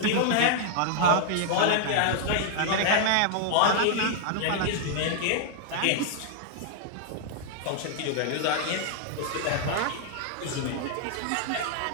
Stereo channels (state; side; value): different; both; correlation 0.00